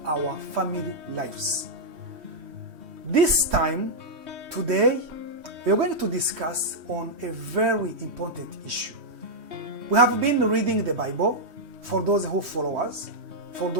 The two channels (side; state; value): left; late; 3.1 ms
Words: our family lives. This time, today, we are going to discuss on a very important issue. We have been reading the Bible for those who follow us, for